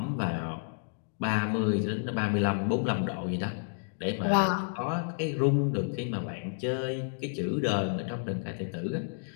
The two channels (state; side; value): silent; right; digital silence